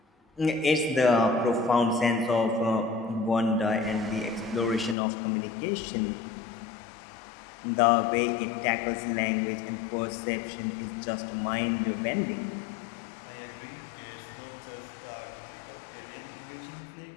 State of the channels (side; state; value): right; drops out; at 5.0 s